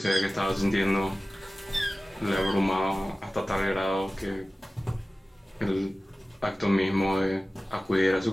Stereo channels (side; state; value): both; normal; correlation 0.97